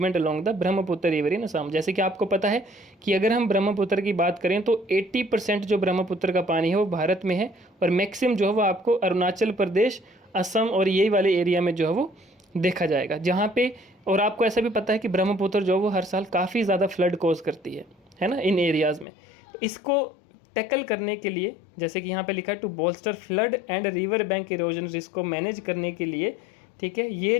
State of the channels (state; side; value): drops out; right; at 19.1 s